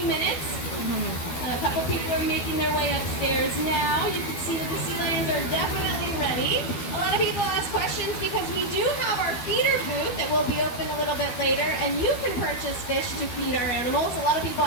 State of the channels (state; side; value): late; right; 12 ms